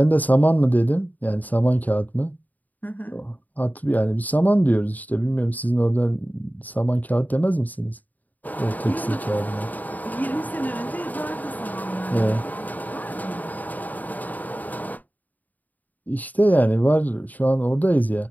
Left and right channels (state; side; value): late; right; 0.081 ms